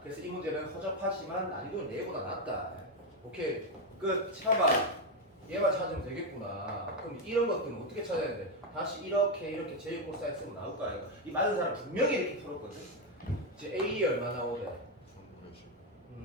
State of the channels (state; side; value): normal; both; correlation 0.06